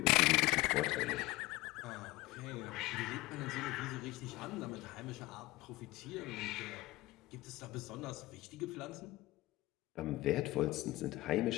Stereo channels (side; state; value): right; quieter; 19.2 dB